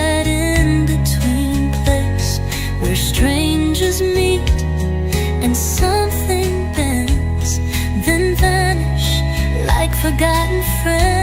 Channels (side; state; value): both; identical; correlation 1.00